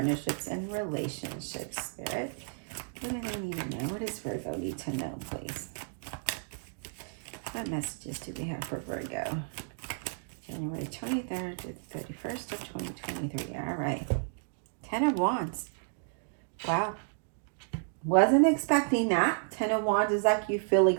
and relationships. Spirit, what do they need to know? What does Virgo need to know, please? What messages do we have for Virgo? January 23rd to the 31st of 2023. All right. 10 of Wands. Wow. Wasn't expecting that. 10 of Wands is like you feel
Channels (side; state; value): left; silent; digital silence